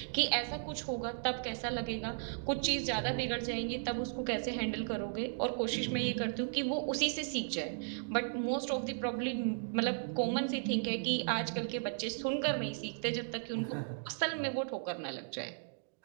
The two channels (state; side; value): silent; left; digital silence